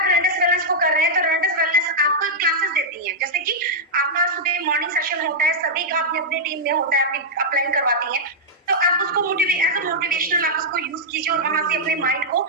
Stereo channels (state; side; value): normal; both; correlation -0.06